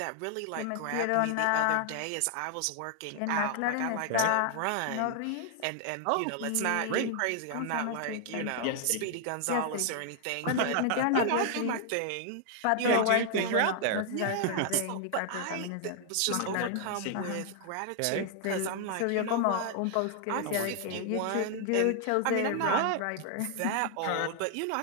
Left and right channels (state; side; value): different; both; correlation 0.00